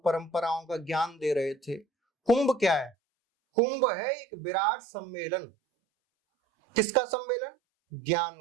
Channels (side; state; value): left; drops out; at 3.0 s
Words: परंपराओं का ज्ञान दे रहे थे। कुंभ क्या है? कुंभ है एक विराट सम्मेलन। किसका सम्मेलन?